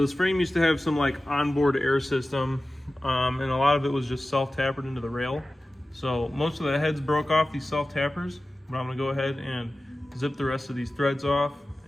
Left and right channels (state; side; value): normal; both; correlation 0.95